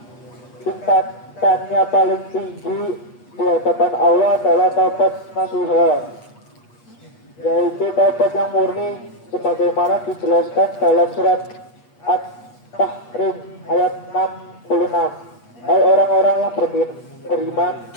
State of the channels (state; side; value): late; right; 8.3 ms